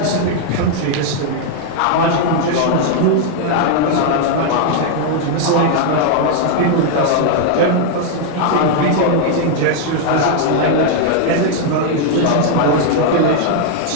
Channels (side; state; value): both; different; correlation 0.00